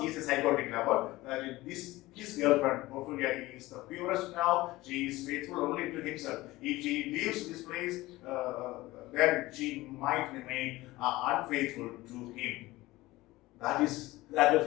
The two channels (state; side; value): quieter; right; 18.9 dB